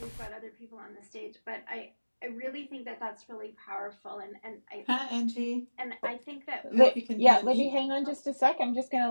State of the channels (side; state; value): both; inverted; correlation -1.00